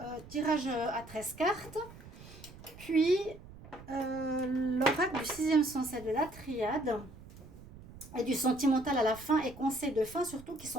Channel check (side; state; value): right; noise; rumble, 18 dB below the sound